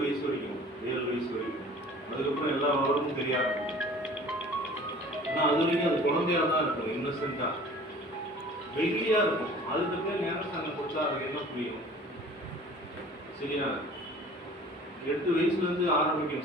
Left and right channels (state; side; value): normal; both; correlation 0.47